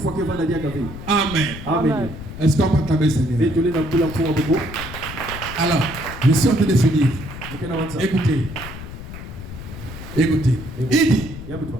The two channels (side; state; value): left; noise; rumble, 11 dB below the sound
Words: Amen. Amen. Est-ce qu'on peut acclamer Seigneur? Alors, je suis en train de finir. Écoutez. Il dit,